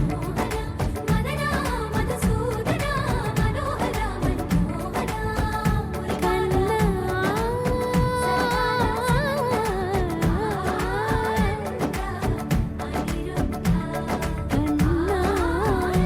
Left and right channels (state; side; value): identical; both; correlation 1.00